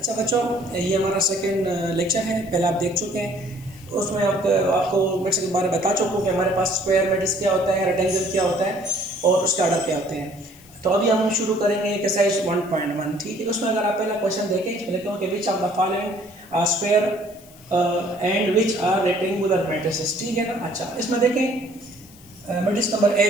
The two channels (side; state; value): left; noise; hiss, 24 dB below the sound